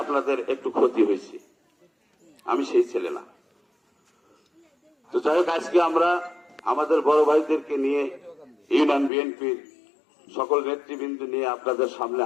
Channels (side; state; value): right; drops out; at 9.1 s